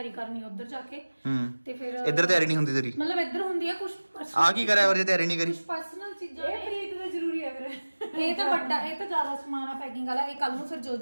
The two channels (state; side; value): inverted; both; correlation -1.00